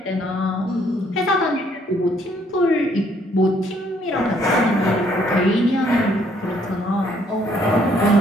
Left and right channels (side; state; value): both; normal; correlation 0.66